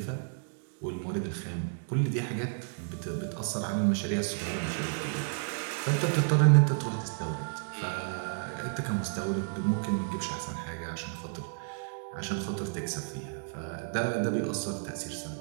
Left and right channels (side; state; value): left; silent; digital silence